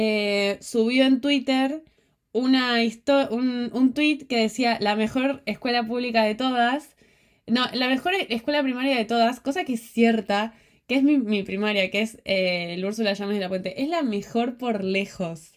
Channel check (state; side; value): identical; both; correlation 1.00